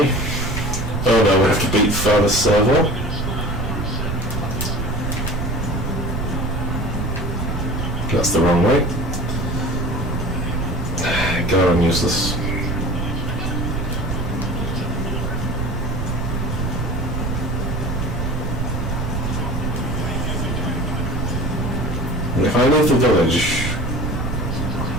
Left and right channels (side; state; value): right; noise; rumble, 2 dB below the sound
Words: Oh no, we have to beat further server. That's the wrong way. God, I'm useless. And if I leave the village...